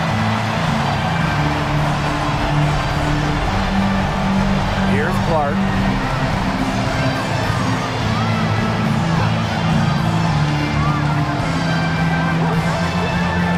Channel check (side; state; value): both; identical; correlation 1.00